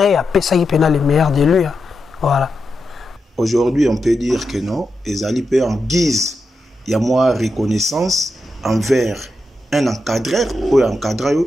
ça il pena les meilleurs de lui. Voilà. Aujourd'hui, on peut dire que non, ezali pe en guise il y a moi reconnaissance envers un encadreur ou encadreur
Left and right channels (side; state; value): both; normal; correlation 0.87